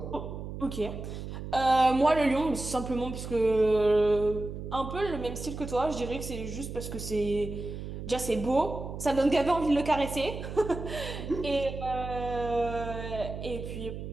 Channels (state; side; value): noise; right; hum, 8 dB below the sound